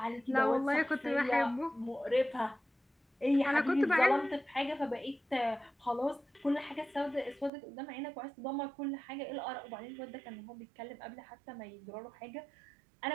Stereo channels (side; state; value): left; drops out; at 7.5 s